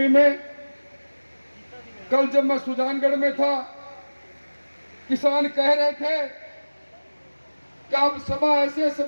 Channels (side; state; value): both; inverted; correlation -1.00